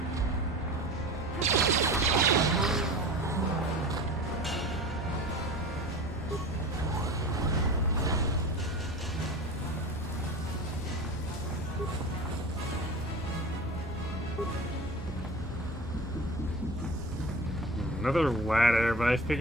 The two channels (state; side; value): normal; both; correlation 0.35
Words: Another ladder, but I